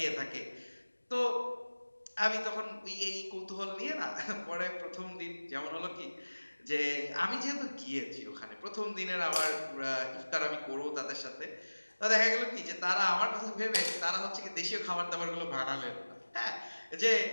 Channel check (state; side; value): inverted; both; correlation -1.00